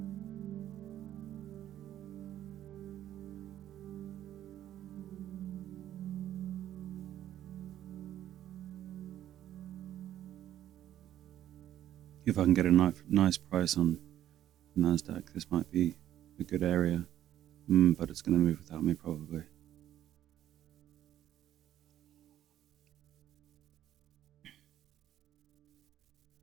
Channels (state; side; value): quieter; left; 11.9 dB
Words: If I can get a nice price on Nasdaq, this might be a good area, but it's going to move without me probably.